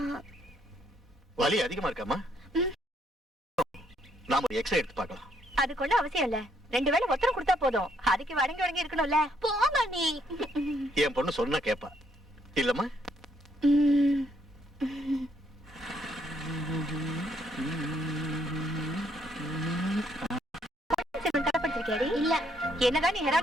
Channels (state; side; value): normal; both; correlation 0.71